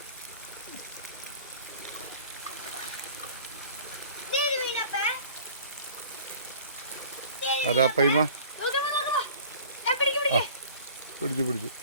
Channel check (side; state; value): both; inverted; correlation -0.47